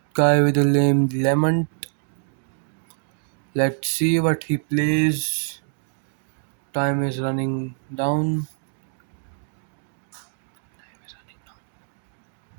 guy with a lame lemon. Let's see what he plays. Time is running down.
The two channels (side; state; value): left; silent; digital silence